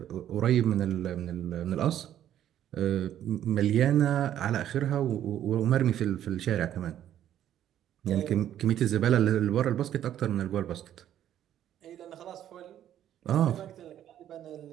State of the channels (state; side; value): quieter; left; 11.1 dB